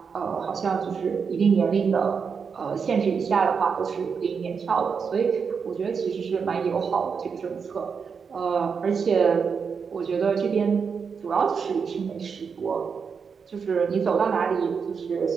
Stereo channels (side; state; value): left; quieter; 6.0 dB